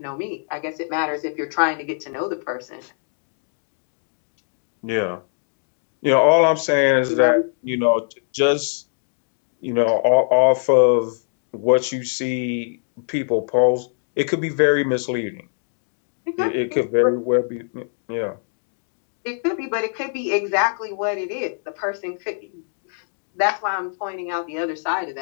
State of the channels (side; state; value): right; silent; digital silence